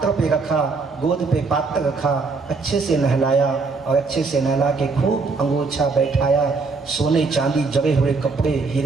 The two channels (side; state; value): left; quieter; 4.2 dB